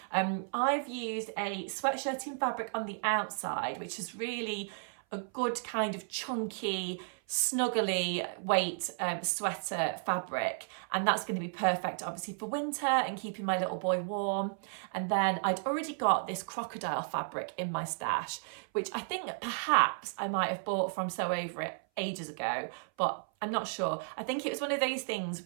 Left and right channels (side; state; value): left; silent; 55 dB below the other